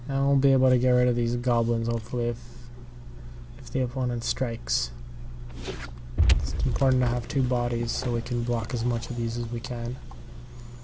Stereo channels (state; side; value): identical; both; correlation 1.00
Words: and we'll be able to get rid of these goblins hopefully if the opponent strikes. It's important to have 2 bodies so we can block as much of these as we can.